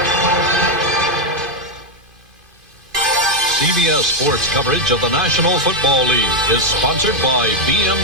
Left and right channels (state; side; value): late; left; 2.5 ms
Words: CBS Sports coverage of the National Football League is sponsored by